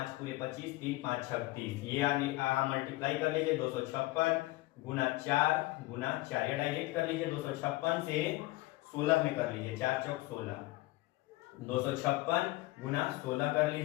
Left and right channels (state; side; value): quieter; right; 19.9 dB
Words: पूरे 25, 3 5 36, ये आगे मल्टीप्लाई कर लीजिए, 256 गुना 4 गुना 4, या डायरेक्ट कर लीजिए 256 से 16 में कर लीजिए, 4 चौक 16, 256 गुना 16 कर